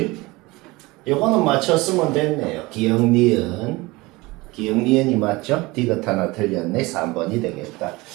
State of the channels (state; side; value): quieter; left; 22.2 dB